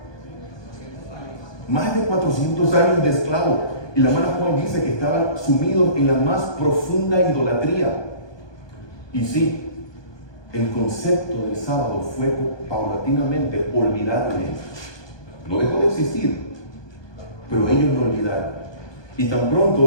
Más de 400 años de esclavo. Y la hermana Juan dice que estaban sumidos en la más profunda idolatría. Y sí, el concepto del sábado fue paulatinamente olvidado de ellos. No dejó de existir, pero ellos lo olvidaron. Y tan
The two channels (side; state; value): right; late; 1.2 ms